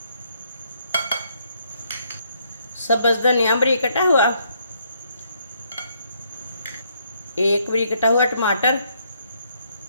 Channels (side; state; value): both; inverted; correlation -0.71